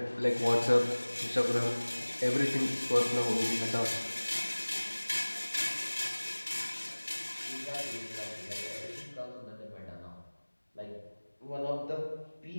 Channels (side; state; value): both; inverted; correlation -1.00